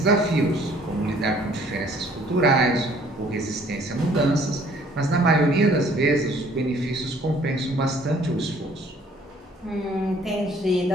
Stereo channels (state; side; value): normal; both; correlation 0.58